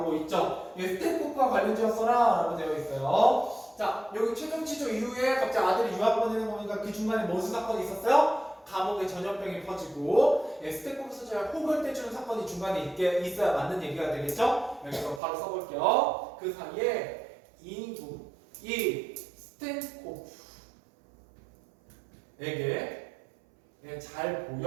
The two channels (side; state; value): left; drops out; at 15.2 s